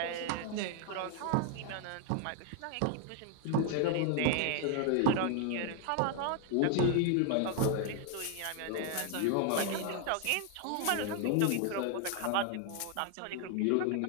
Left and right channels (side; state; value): both; different; correlation 0.00